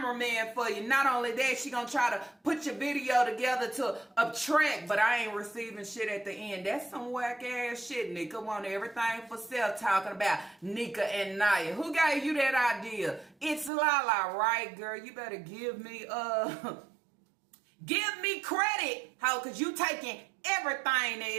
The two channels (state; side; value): drops out; left; at 13.7 s